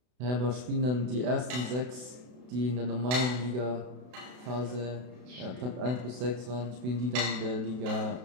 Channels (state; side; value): late; left; 32 ms